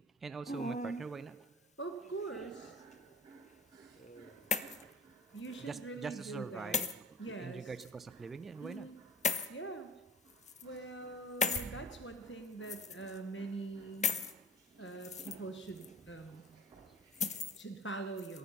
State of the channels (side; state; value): both; normal; correlation 0.43